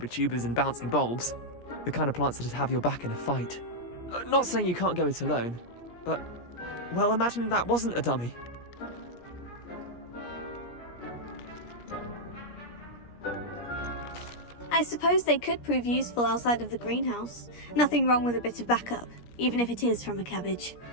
tubers and bouncing bulbs. The kind of plants that'd have your back in a fight. Not saying you can't go it alone, but... well, imagine that wasn't a dummy. I suppose they could prove useful outside of the greenhouse. Nothing wrong with a bit of backup, even if it is from a cabbage.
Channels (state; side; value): late; right; 17 ms